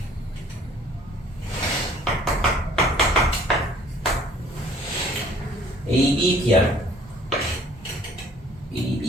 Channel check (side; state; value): both; normal; correlation 0.55